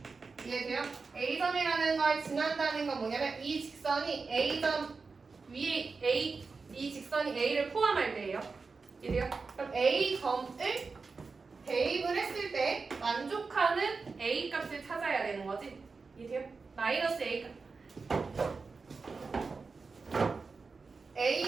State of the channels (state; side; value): quieter; left; 4.5 dB